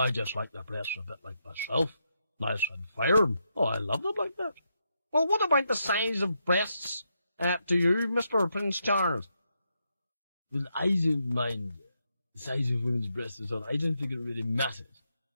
just like the breasts a bit like myself. Nice and firm. Oh, I love them like that. Well, what about the size of breasts to you, Mr. Prince Charles? Well, I don't mind the size of women's breasts at all. I don't think it really matters.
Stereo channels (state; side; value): inverted; both; correlation -0.82